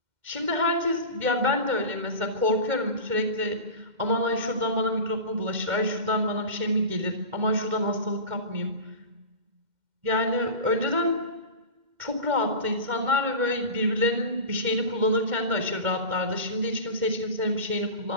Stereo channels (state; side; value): late; left; 2.1 ms